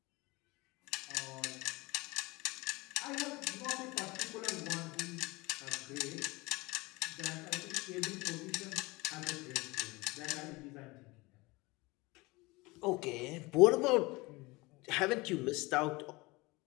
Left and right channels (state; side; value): quieter; right; 23.2 dB